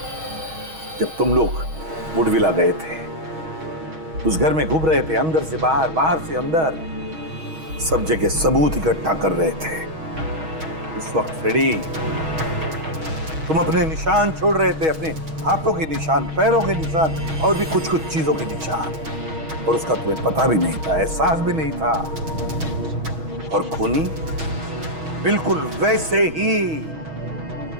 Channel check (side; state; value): left; late; 6.3 ms